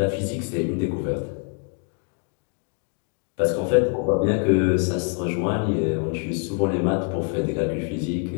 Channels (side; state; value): right; quieter; 37.8 dB